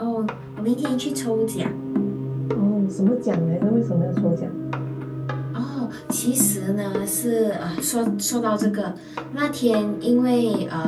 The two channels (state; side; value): identical; both; correlation 1.00